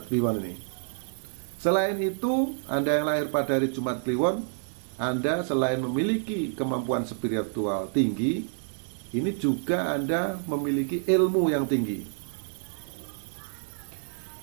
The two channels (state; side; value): silent; left; 59 dB below the other